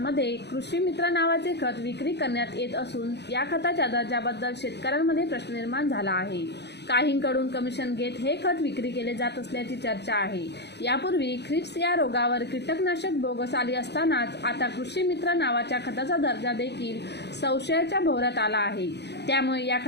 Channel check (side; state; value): right; late; 0.49 ms